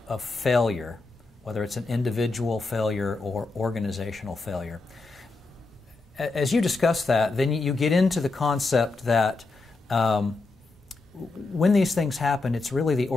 of failure, whether it's an individual failure or organizational failure. As you discuss that, then you get into the concept that when these things happen, it's really the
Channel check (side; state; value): right; quieter; 3.6 dB